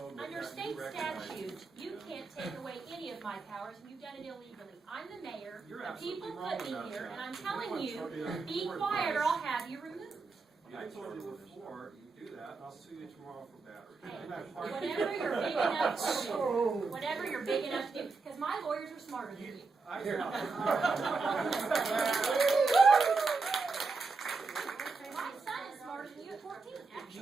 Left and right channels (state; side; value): quieter; left; 4.2 dB